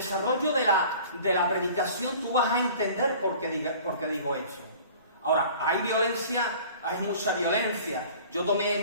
de la predicación tú vas a entender por qué digo esto. Ahora, hay violencia, hay mucha violencia. Yo tomé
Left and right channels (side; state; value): both; inverted; correlation -0.46